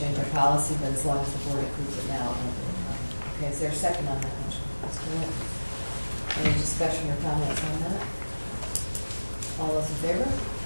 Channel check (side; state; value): both; inverted; correlation -1.00